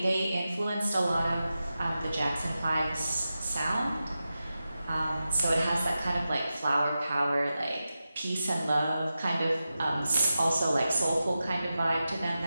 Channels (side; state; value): both; inverted; correlation -0.92